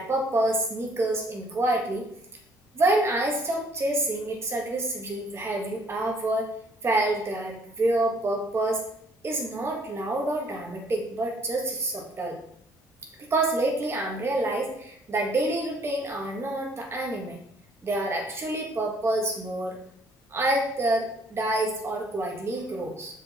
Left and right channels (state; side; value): normal; both; correlation 0.61